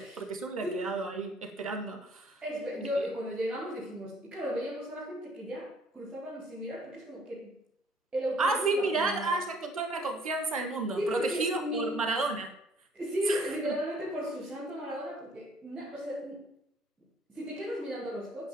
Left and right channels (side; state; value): both; normal; correlation 0.59